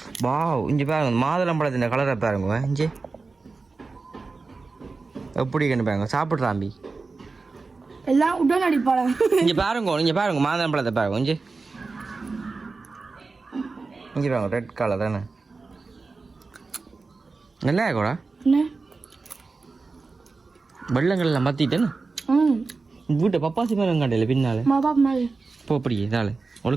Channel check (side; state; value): left; quieter; 4.0 dB